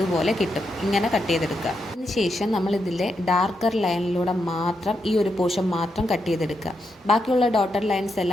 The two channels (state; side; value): normal; both; correlation 0.83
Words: കിട്ടും. ഇങ്ങനെ കട്ട് ചെയ്തെടുക്കുക. അതിനുശേഷം നമ്മൾ ഇതിലെ ഡാർക്കർ ലൈനിലൂടെ മാത്രം ഈ ഒരു പോർഷൻ മാത്രം കട്ട് ചെയ്തെടുക്കുക. ബാക്കിയുള്ള ഡോട്ടർ ലൈൻസ്